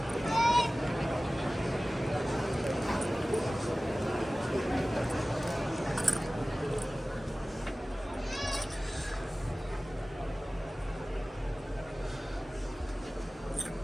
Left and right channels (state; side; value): normal; both; correlation 0.97